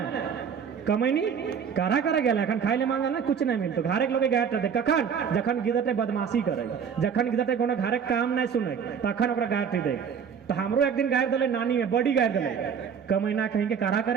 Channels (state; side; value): quieter; left; 7.1 dB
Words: कमैनी कारा करा गया अखन खाए ले मांगे ना कुछ नहीं मिलतो घरे के लोग गायर दे कखन जखन गिदटे बदमाशी करे जखन गिदटे कोनो घरे काम नहीं सुने तखन ओकरा गायर दे तो हमरो एक दिन गायर दले नानी में बड़ी गायर दले कमैना कहीं के कारा